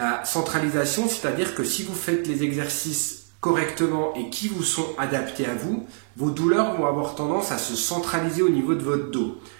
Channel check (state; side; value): silent; left; digital silence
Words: centralisation, c'est-à-dire que si vous faites les exercices correctement et qui vous sont adaptés à vous, vos douleurs vont avoir tendance à se centraliser au niveau de votre dos.